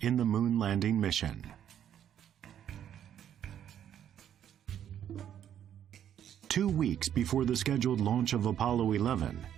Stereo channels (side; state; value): left; quieter; 9.9 dB